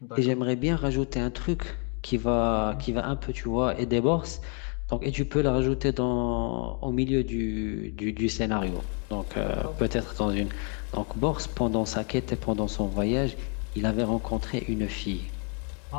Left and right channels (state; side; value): quieter; right; 39.2 dB